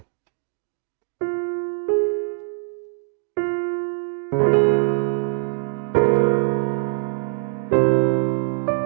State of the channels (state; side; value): silent; left; 63 dB below the other